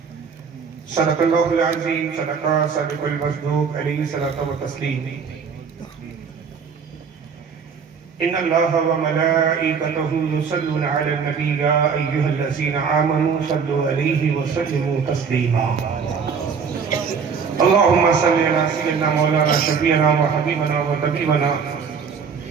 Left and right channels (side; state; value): left; quieter; 6.1 dB